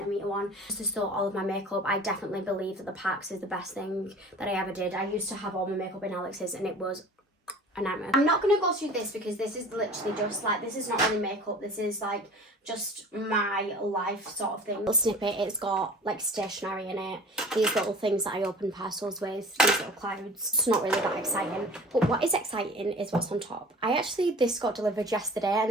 one. Just to store all of my makeup, I definitely believe that the Pax is the best thing that I ever did. I used to have all my makeup in Alex's and it was a nightmare. I'm not going to go through this because this is literally just like, this is not really makeup, this is like just my life sort of thing. Little snippet, it's got like stationery in it, these little things that I open parcels with, these little clouds. It's not really that exciting, but what is exciting is what's on top. This got delivered yesterday, and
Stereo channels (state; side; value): normal; both; correlation 0.43